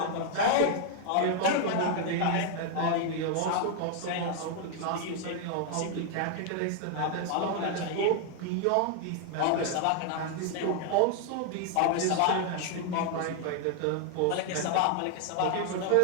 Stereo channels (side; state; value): both; different; correlation 0.00